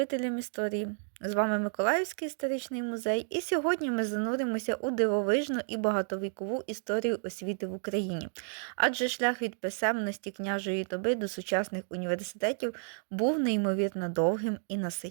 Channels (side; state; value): left; silent; 57 dB below the other